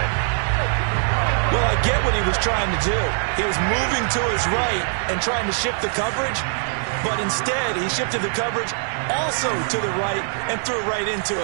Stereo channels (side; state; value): left; silent; 64 dB below the other